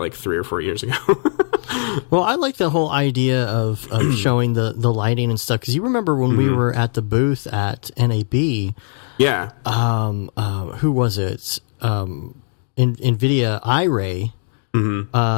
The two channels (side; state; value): right; silent; digital silence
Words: 3 or 4 years ago. Well, I like the whole idea of showing the lighting and stuff, because you remember when we were at the booth at NAB. Yeah. Who was it? NVIDIA iRay.